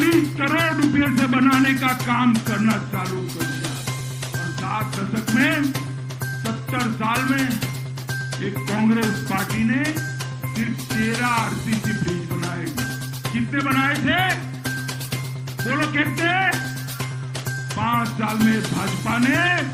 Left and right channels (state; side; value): identical; both; correlation 1.00